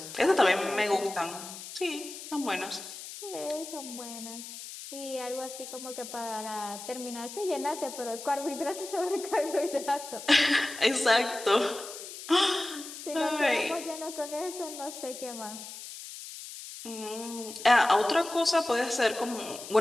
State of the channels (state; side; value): noise; left; hiss, 12 dB below the sound